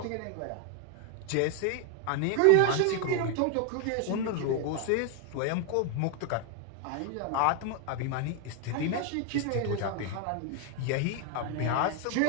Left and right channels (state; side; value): different; both; correlation 0.00